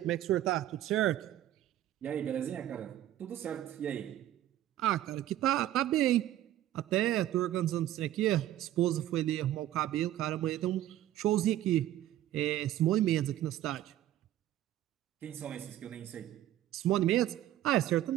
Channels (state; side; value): quieter; left; 13.2 dB